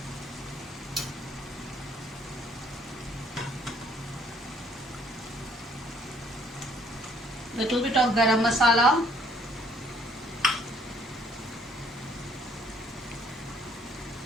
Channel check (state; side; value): normal; both; correlation 0.62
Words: Little bit of garam masala.